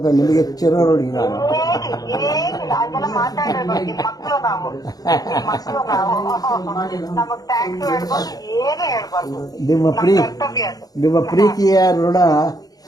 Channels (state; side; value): late; right; 0.18 ms